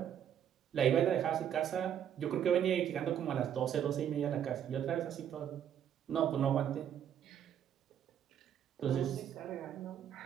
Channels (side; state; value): left; quieter; 9.5 dB